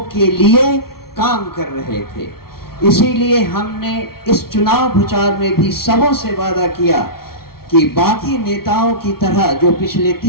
के लिए काम कर रहे थे। इसीलिए हमने इस चुनाव प्रचार में भी सबों से वादा किया कि बाकी नेताओं की तरह जो पिछले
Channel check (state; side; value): late; right; 0.94 ms